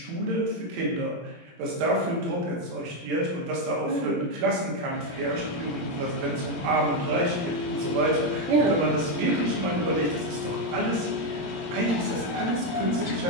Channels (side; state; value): left; late; 17 ms